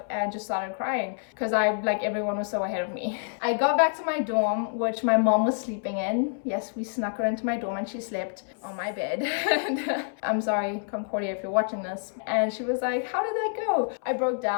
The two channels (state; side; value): silent; right; 60 dB below the other